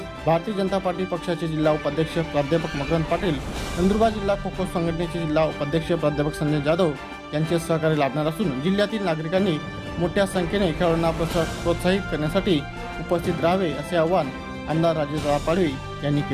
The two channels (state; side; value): identical; both; correlation 1.00